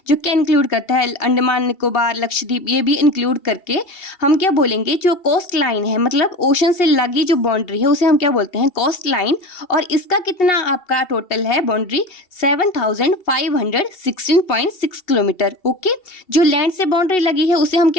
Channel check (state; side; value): late; right; 2.7 ms